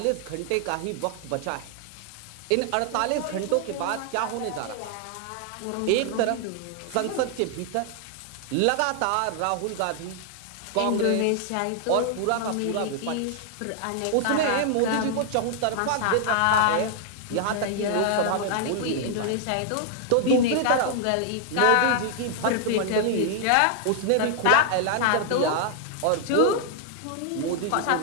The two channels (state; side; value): different; both; correlation 0.00